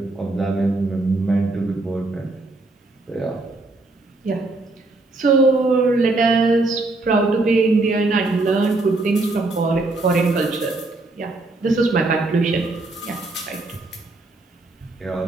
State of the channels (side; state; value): left; quieter; 3.1 dB